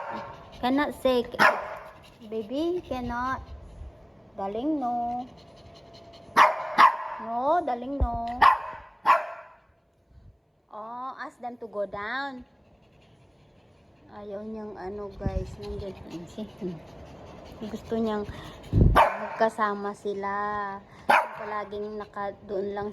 say. Baby cannot. Darling, no. No, darling, no. Oh, ask them to go down. Ayaw niyang ano guys, nandiyan. Gusto niyang magkasama sila. Palaging doon lang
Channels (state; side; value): identical; both; correlation 1.00